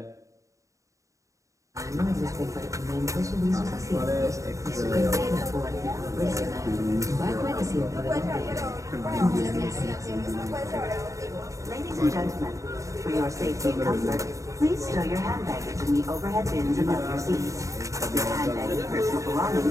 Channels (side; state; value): left; late; 0.16 ms